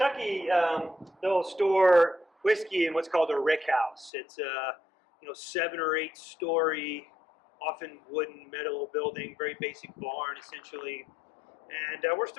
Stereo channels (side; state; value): right; drops out; at 4.1 s